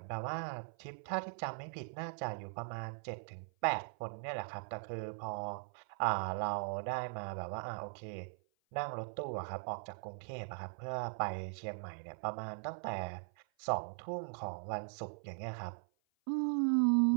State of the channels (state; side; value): silent; left; 51 dB below the other